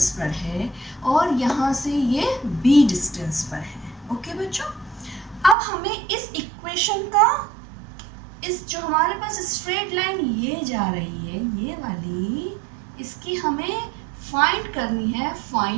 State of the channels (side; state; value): left; drops out; at 5.6 s